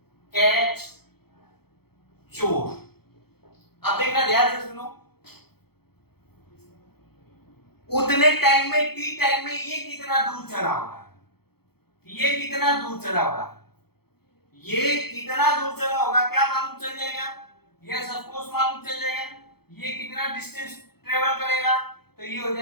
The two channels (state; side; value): late; right; 0.96 ms